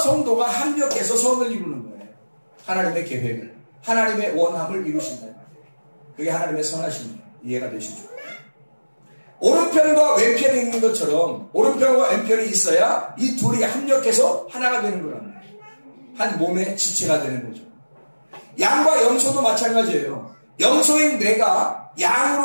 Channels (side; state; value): both; inverted; correlation -1.00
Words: 합력해서 선을 이루는 거예요. 하나님의 계획을, 하나님의 원함을 이루신다. 그게 하나님의 선하심이에요. 이해가 되시죠? 오른편과 왼편이 있는 것처럼 오른편과 왼편이 있어야 이 둘이 합력해서 하나가 되는 거란 말이에요. 한 몸의 지체가 되는 거죠. 양과 염소도 마찬가지예요. 염소인 내가